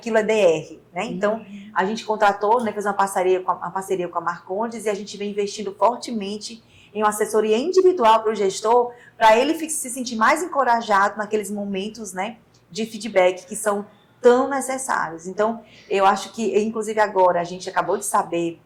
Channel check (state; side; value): identical; both; correlation 1.00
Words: é DR, né? Então, a gente contratou, né, fez uma parceria com a Marcondes e a gente vem investindo fortemente em uma assessoria individual para o gestor, para ele se sentir mais encorajado naqueles momentos, né, de feedback que são tão necessários. Então, eu acho que, inclusive agora, a gente acabou de saber